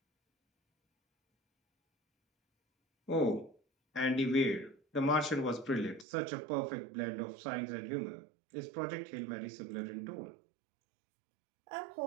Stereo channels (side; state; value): left; drops out; at 6.1 s